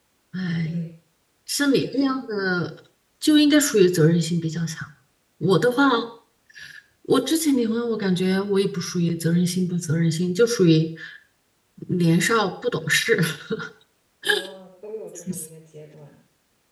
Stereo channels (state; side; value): identical; both; correlation 1.00